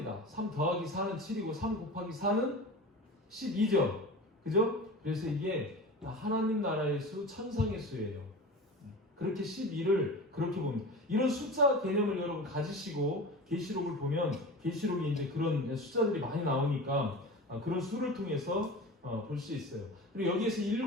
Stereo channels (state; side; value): normal; both; correlation 0.32